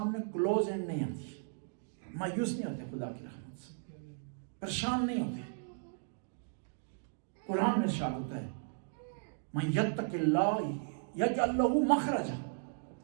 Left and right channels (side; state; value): left; silent; digital silence